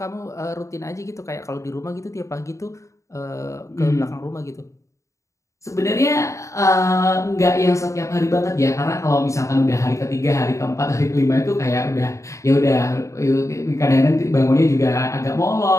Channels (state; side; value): late; right; 0.15 ms